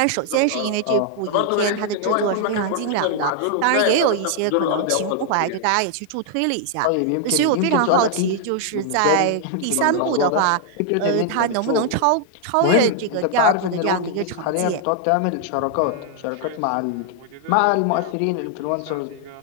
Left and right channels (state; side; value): different; both; correlation 0.00